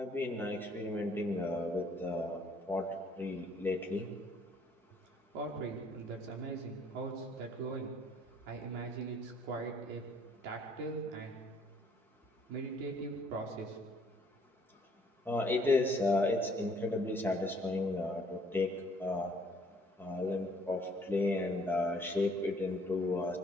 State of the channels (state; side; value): normal; both; correlation 0.62